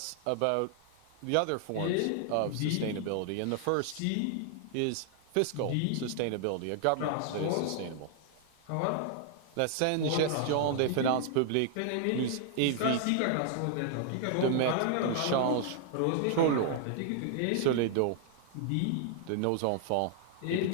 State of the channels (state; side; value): different; both; correlation 0.00